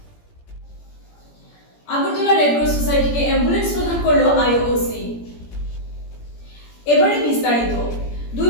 Agartala red cross সোসাইটিকে অ্যাম্বুলেন্স প্রদান করল আইওসি। এবারে বিস্তারিত। দুই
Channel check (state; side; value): late; right; 17 ms